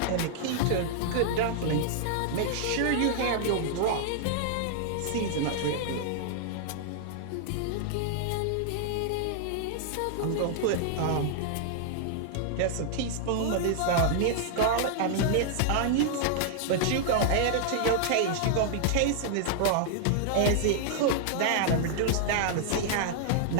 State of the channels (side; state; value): both; different; correlation -0.01